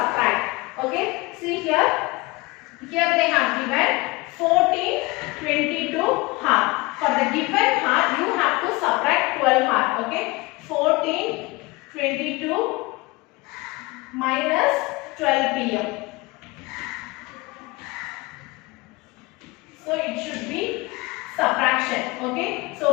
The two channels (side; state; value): right; quieter; 23.3 dB